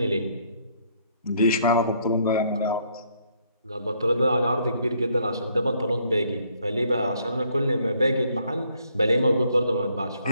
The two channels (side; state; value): both; inverted; correlation -0.68